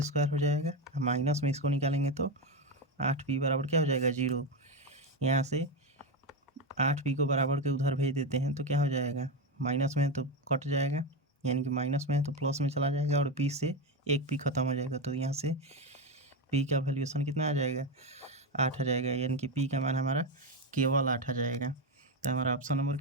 हो जाएगा, माइनस में इसको निकालेंगे तो 8p बराबर क्या हो जाएगा, 0। यहाँ से 8p को बराबर के उधर भेज देते हैं तो क्या हो जाएगा, माइनस में है तो कट जाएगा, यानी कि माइनस में है तो प्लस में चला जाएगा, और p से एक p खत्म हो जाएगा, तो यहाँ से p का वैल्यूएशन कितना आ जाएगा, 8 आ जाएगा, यानी कि p का मान हमारा केवल 8 आ जाएगा। तो हमारा ऑप्शन नंबर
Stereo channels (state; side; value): normal; both; correlation 0.12